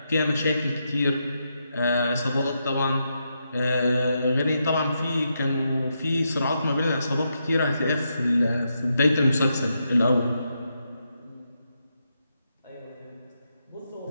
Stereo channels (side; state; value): both; inverted; correlation -0.83